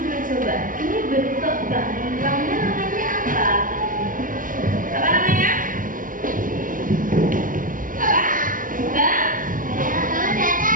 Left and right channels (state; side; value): late; left; 0.39 ms